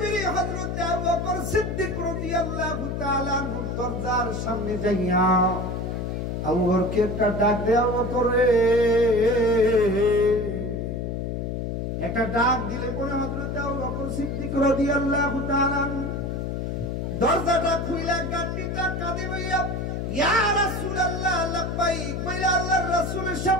হযরত আবু বকর সিদ্দিক রাদিয়াল্লাহু তাআলা আনহু দরজার সামনে যাইয়া আবু বকরকে একটা ডাক দেয়া, আবু বকর রে, একটা ডাক দিলে পরে হযরত আবু বকর সিদ্দিক রাদিয়াল্লাহু তাআলা দরজাটা খুইলা গাটিটা কাঁদে বইয়া ইয়া রাসূলুল্লাহ লাব্বাইক বইলা আল্লাহর রাসূলের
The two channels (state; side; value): noise; left; hum, 3 dB below the sound